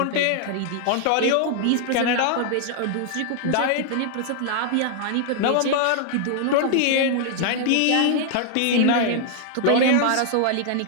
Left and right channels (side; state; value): both; different; correlation 0.00